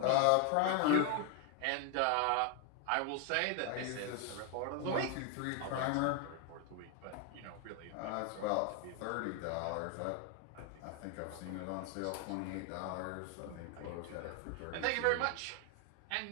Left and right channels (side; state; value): both; different; correlation 0.01